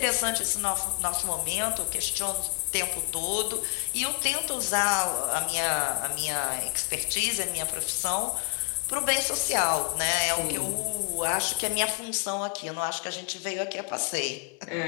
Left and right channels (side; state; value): right; quieter; 38.6 dB